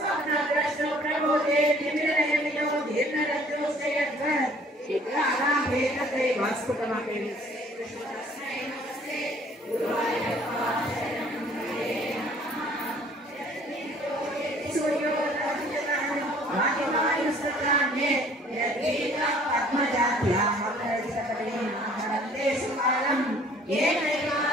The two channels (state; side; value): normal; both; correlation 0.56